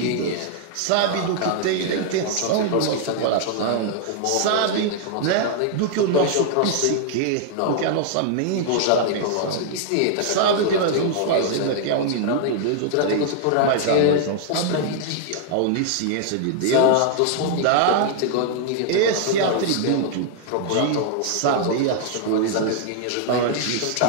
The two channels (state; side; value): different; both; correlation -0.01